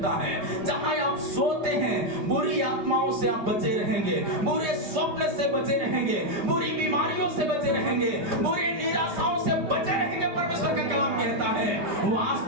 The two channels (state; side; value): late; left; 5.0 ms